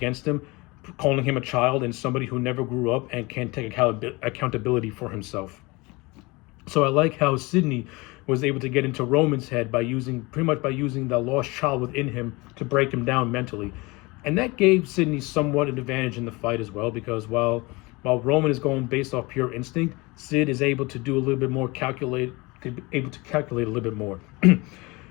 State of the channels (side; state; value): right; quieter; 24.5 dB